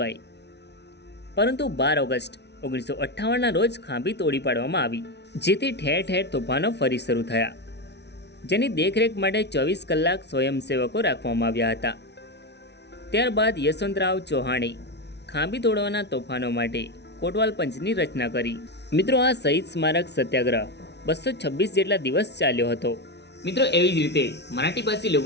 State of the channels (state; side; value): late; right; 0.50 ms